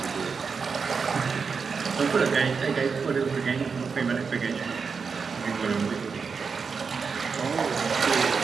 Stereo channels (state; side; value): quieter; left; 5.4 dB